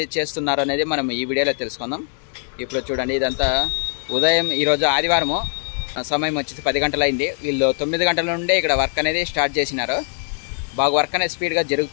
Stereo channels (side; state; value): right; silent; 60 dB below the other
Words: చేస్తున్నారు అనేది మనం ఈ వీడియోలో తెలుసుకుందాం. ఇప్పుడు చూడండి, ఇదంతా ఉదయం, ఈరోజు ఆదివారము, సమయం వచ్చేసి 10 గంటలు అయింది. వీళ్ళు 9 గంటల నుండే ఇక్కడ వర్క్ అనేది స్టార్ట్ చేసినారు. బాగా వర్క్ అనేది స్పీడ్గా